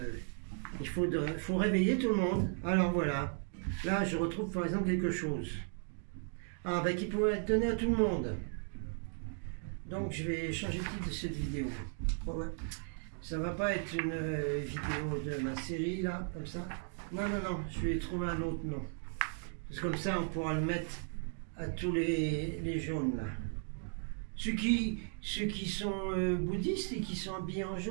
il faut réveiller tout le monde. Alors voilà. Là, je retrouve par exemple quelque chose. Ah, ben qui pourrait être donné à tout le monde. Donc, je vais changer le titre de cette vidéo. Ouais, ouais. Ça va pas être une vidéo de ma série, là, comme ça. Non, non, non, je vais trouver un autre nom. Parce que comme ça, on pourra le mettre à tous les jaunes, là. Ceux qui sont bouddhistes et qui sont habillés en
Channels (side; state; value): left; silent; 54 dB below the other